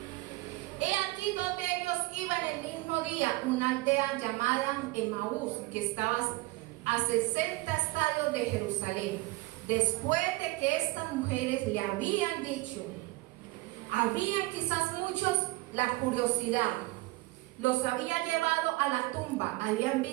He aquí donde ellos iban el mismo día, una aldea llamada Emaús, que estaba a 60 estadios de Jerusalén. Después de que estas mujeres le habían dicho: Habían quizás muchos la curiosidad. Los había llevado a la tumba, habían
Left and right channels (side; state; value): left; quieter; 21.6 dB